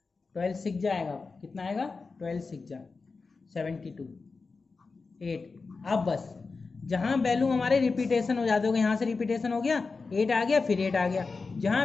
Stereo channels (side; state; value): right; quieter; 4.3 dB